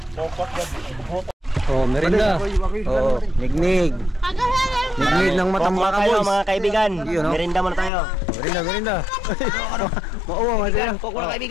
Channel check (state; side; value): drops out; right; at 7.9 s